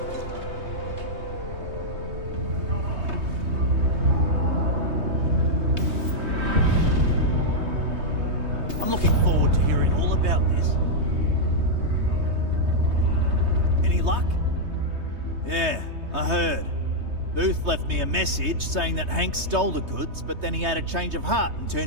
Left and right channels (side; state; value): left; late; 3.2 ms